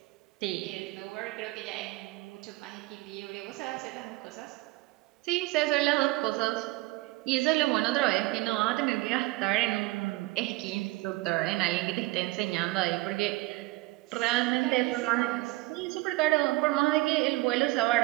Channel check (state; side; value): quieter; left; 21.1 dB